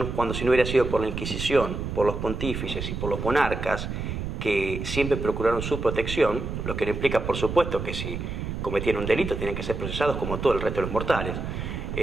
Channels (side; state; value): right; noise; rumble, 5 dB below the sound